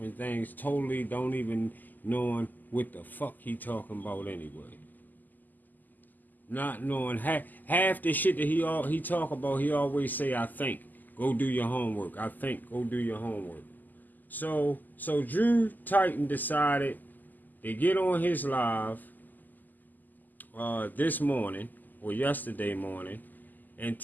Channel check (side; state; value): right; late; 0.085 ms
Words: things, totally don't even knowing what the fuck he talking about anyway. Not knowing half the shit that he talk about, he always say, I think. Go do your homework. I think. Go do your homework. So Drew Titan decided to get on his live this morning or yesterday morning and